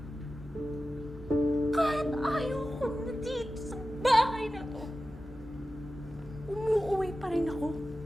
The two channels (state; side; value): normal; both; correlation 0.94